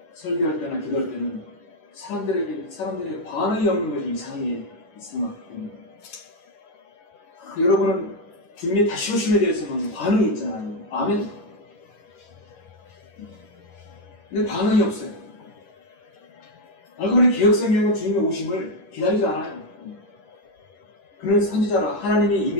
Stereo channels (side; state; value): right; late; 11 ms